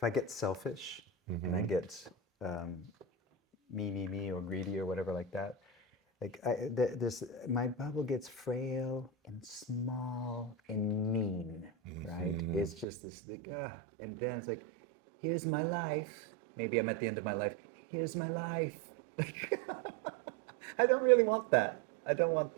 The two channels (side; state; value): left; drops out; at 12.9 s